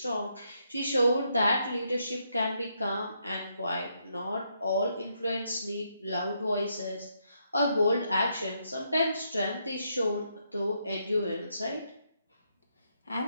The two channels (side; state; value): both; inverted; correlation -0.77